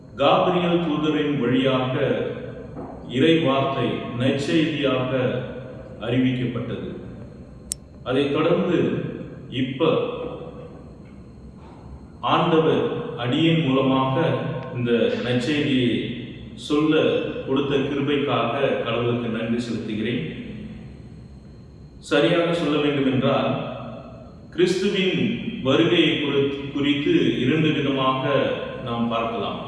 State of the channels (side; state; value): both; identical; correlation 1.00